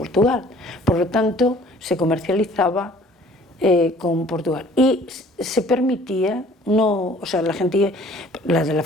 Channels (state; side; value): normal; both; correlation 0.54